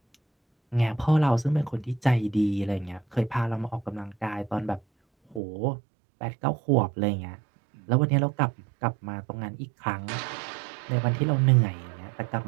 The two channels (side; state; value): left; drops out; at 5.4 s